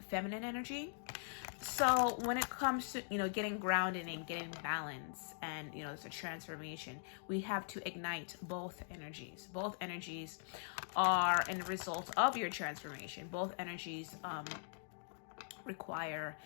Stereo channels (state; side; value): silent; right; digital silence